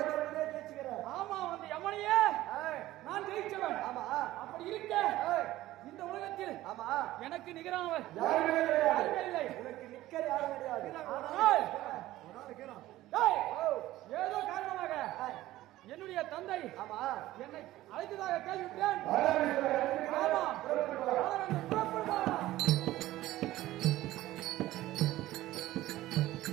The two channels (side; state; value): left; quieter; 15.8 dB